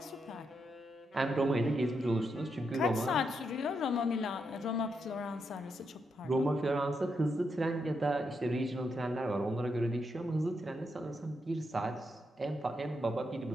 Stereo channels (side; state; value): both; normal; correlation 0.82